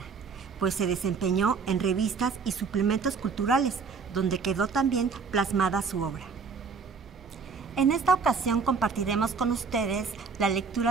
pues se desempeñó en revistas y suplementos culturales, donde quedó también plasmada su obra. En esta ocasión compartiremos con ustedes la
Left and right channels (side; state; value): left; quieter; 5.3 dB